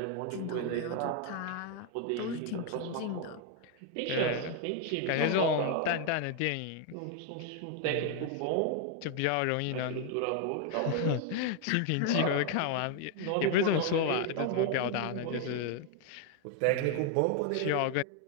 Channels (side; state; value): both; different; correlation 0.01